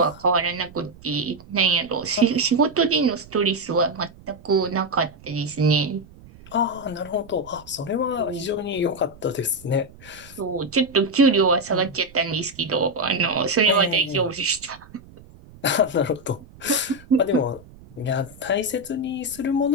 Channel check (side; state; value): right; noise; rumble, 22 dB below the sound